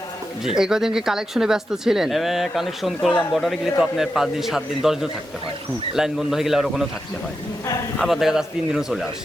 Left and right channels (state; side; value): normal; both; correlation 0.88